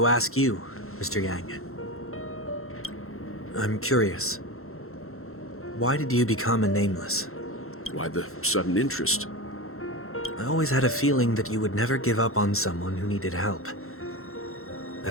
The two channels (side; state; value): right; late; 0.62 ms